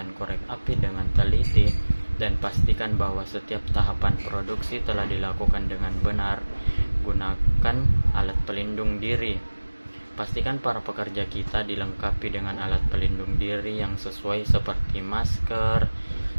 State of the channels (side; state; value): both; inverted; correlation -1.00